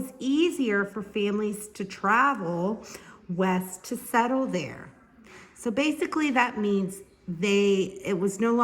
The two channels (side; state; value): both; identical; correlation 1.00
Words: easier for families to travel west to settle there. So basically that means it was no